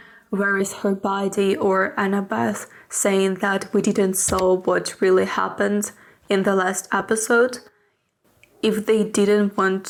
where is her body, or Annabeth saying that we didn't saw what really happened in the last episode, if they didn't want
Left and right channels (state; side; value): identical; both; correlation 1.00